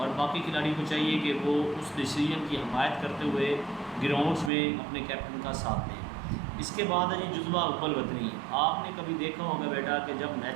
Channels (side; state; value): left; drops out; at 4.5 s